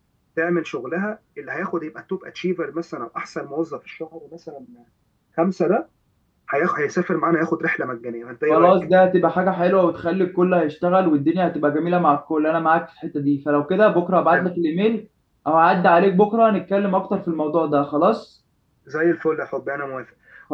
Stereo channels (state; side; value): identical; both; correlation 1.00